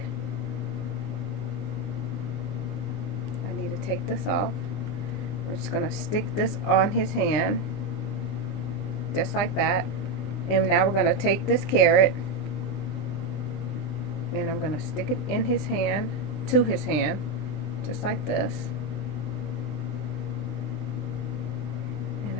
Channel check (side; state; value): right; late; 20 ms